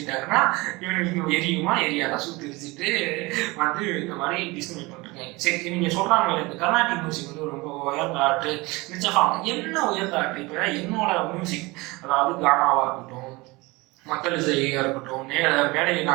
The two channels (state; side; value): quieter; left; 23.3 dB